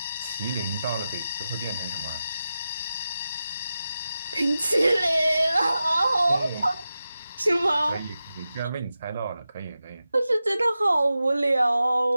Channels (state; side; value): inverted; both; correlation -0.92